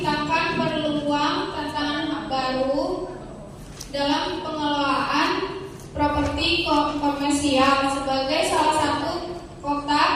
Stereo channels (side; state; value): both; identical; correlation 1.00